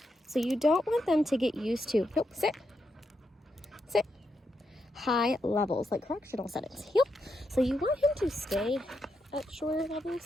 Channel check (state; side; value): normal; both; correlation 0.82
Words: So you don't want them to get used to, nope, sit. Sit. High levels, like correctional settings. Yep. So you want him to stay at shorter